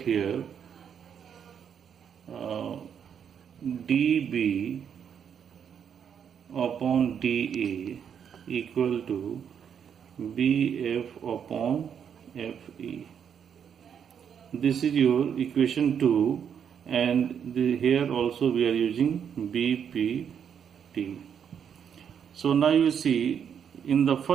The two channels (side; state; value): left; quieter; 7.9 dB